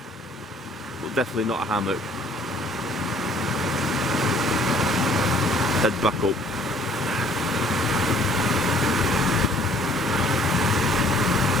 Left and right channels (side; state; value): both; normal; correlation 0.58